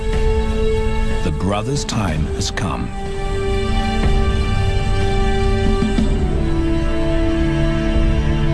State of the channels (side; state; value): both; identical; correlation 1.00